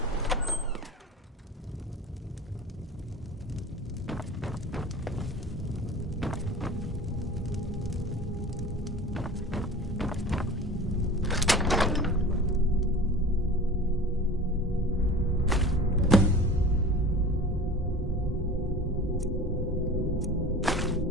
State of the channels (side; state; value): both; normal; correlation 0.39